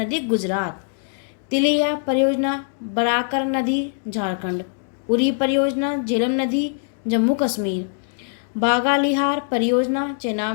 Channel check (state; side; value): silent; right; digital silence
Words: गुजरात। तिलिया परियोजना बराकर नदी झारखंड। उरी परियोजना झेलम नदी जम्मू कश्मीर। बागालिहार परियोजना